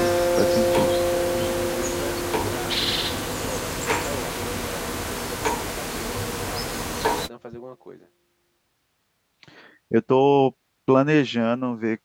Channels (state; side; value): identical; both; correlation 1.00